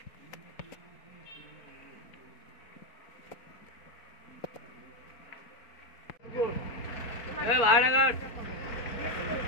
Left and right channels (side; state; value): right; late; 4.4 ms